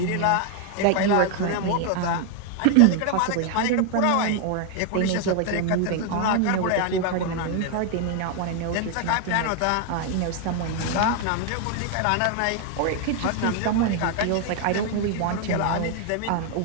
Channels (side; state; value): both; different; correlation 0.00